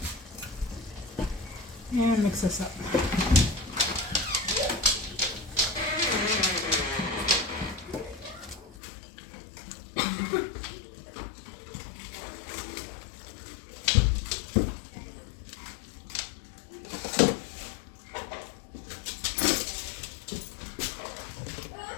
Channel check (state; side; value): drops out; right; at 8.8 s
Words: And mix this up.